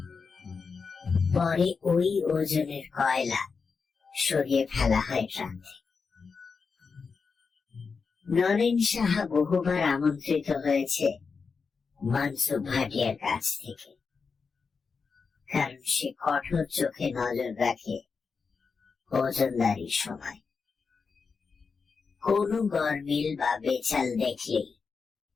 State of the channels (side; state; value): right; quieter; 5.1 dB